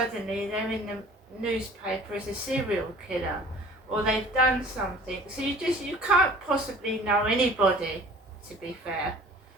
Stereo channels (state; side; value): normal; both; correlation 0.48